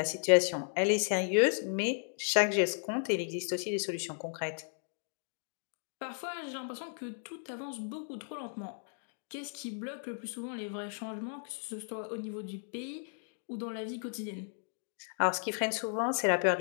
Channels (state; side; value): silent; right; digital silence